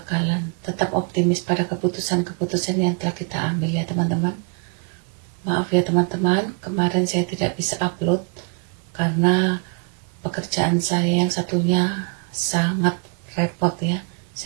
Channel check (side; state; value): left; quieter; 35.0 dB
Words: Tetap optimis pada keputusan-keputusan yang telah kita ambil ya teman-teman. Maaf ya teman-teman, kemarin saya tidak bisa upload karena pekerjaan saya yang satunya sangat repot ya,